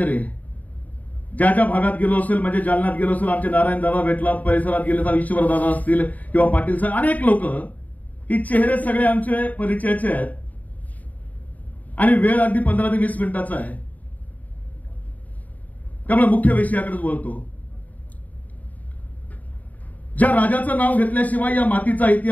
ज्या ज्या भागात गेलो असेल, म्हणजे जालन्यात गेलो असेल, आमचे नारायण दादा भेटला, परिसरात गेले तर ईश्वर दादा असतील किंवा पाटील साहेब, अनेक लोक, ही चेहरे सगळे आमचे परिचयाचे आहेत आणि वेळ अगदी 15 ते 20 मिनिटाचा आहे, त्यामुळे मुख्य विषयाकडे बोलतो। ज्या राजाचं नाव घेतल्याशिवाय या मातीचा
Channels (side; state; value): right; late; 0.075 ms